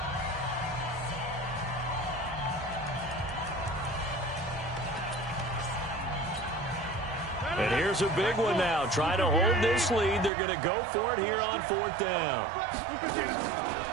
And here's a big one now. Trying to hold this lead. They're going to go for it here on 4th down.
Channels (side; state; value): left; drops out; at 10.3 s